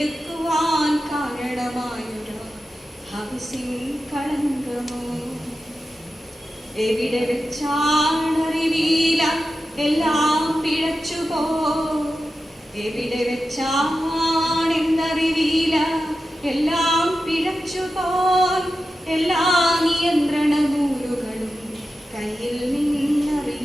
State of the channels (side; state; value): both; normal; correlation 0.92